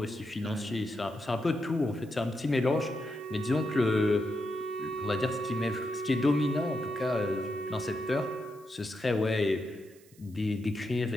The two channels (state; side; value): noise; right; hiss, 27 dB below the sound